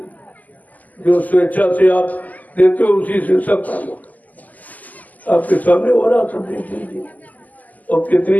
जो स्वेच्छा से आप देते हो उसी से सब काम होता। आपके सामने हो रहा सब देख लीजिए, और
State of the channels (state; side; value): late; right; 0.080 ms